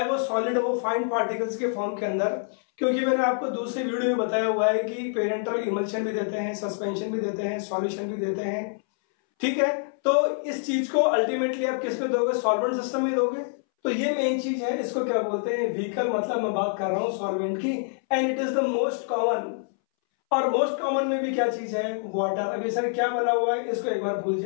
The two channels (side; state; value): right; silent; 61 dB below the other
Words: वो सॉलिड हो, फाइन पार्टिकल्स के फॉर्म के अंदर। क्योंकि मैंने आपको दूसरे वीडियो में बताया हुआ है कि पेरेंटल इमल्शन भी देते हैं, सस्पेंशन भी देते हैं, सॉल्यूशन भी देते हैं। ठीक है, तो इस चीज को अल्टीमेटली आप किस पे दोगे? सॉल्वेंट सिस्टम में दोगे। तो ये मेन चीज है, इसको क्या बोलते हैं? व्हीकल। मतलब मैं बात कर रहा हूं सॉल्वेंट की, and it is the most common. और मोस्ट कॉमन में भी क्या चीज है? वाटर। अभी सर क्या बना हुआ है इसको एक बार भूल